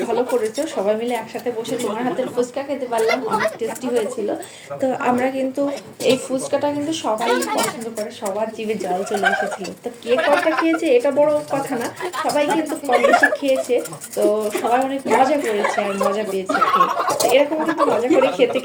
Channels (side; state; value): both; identical; correlation 1.00